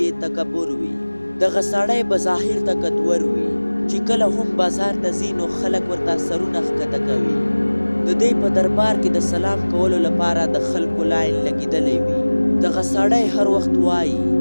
یې تکبر وي. دغه سړی به ظاهر طاقتور وي، چې کله هم بازار ته ځي نو خلک ورته سرونه ښکته کوي. د دې په دربار کې د سلام کولو لپاره د خلکو لاین لګېدلی وي. دغه سړی هر وخت وایي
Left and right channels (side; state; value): both; inverted; correlation -1.00